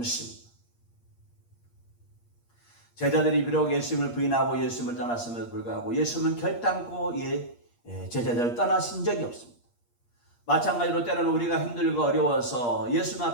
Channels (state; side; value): late; right; 8.5 ms